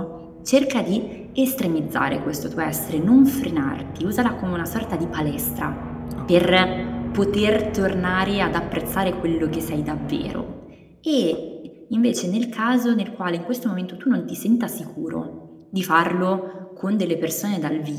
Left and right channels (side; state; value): both; identical; correlation 1.00